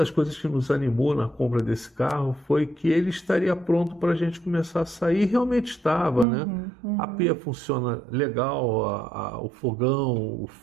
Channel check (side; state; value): left; drops out; at 6.2 s